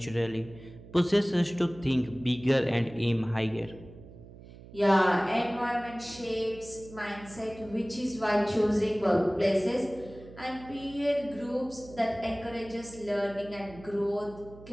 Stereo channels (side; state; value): right; noise; hum, 18 dB below the sound